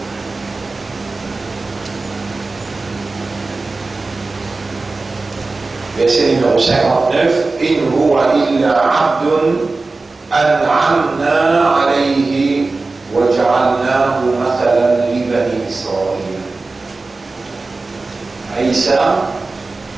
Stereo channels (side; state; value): left; quieter; 3.6 dB